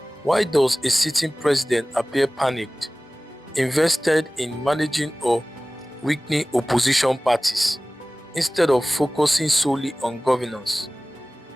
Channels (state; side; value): normal; both; correlation 0.98